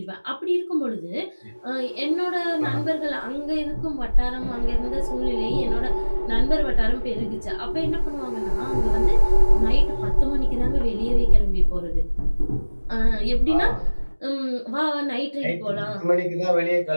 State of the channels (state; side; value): inverted; both; correlation -1.00